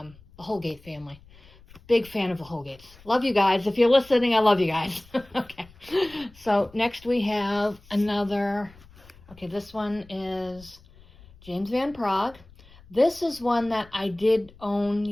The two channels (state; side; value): noise; left; rumble, 24 dB below the sound